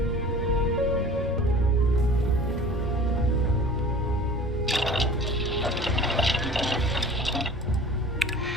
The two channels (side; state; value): both; normal; correlation 0.43